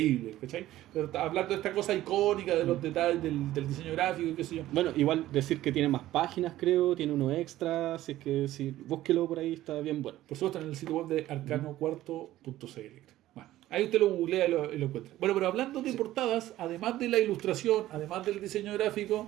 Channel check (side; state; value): left; quieter; 14.8 dB